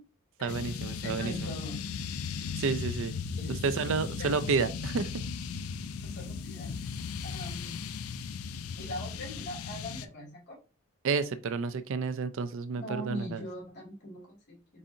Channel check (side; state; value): both; normal; correlation 0.23